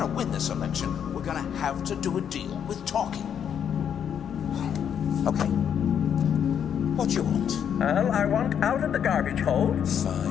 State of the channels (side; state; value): right; quieter; 8.5 dB